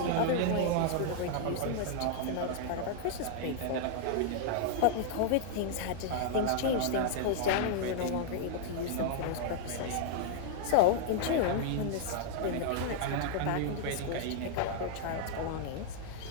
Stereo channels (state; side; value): different; both; correlation -0.01